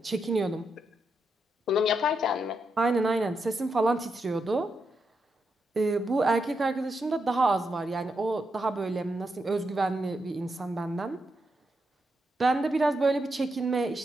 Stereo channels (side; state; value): both; normal; correlation 0.84